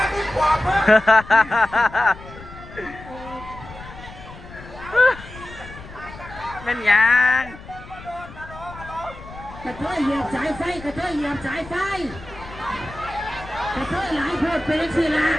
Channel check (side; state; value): left; noise; rumble, 16 dB below the sound